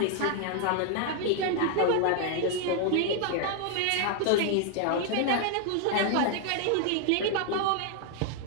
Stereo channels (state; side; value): different; both; correlation 0.00